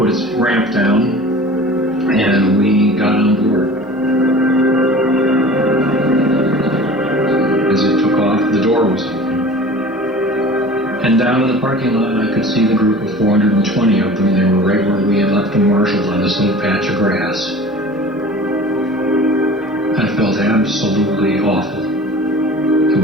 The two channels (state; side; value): normal; both; correlation 0.41